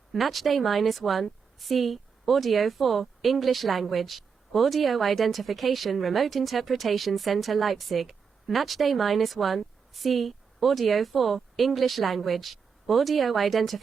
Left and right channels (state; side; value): quieter; left; 6.0 dB